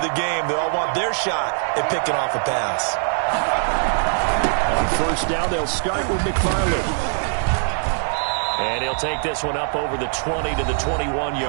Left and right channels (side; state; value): left; silent; 56 dB below the other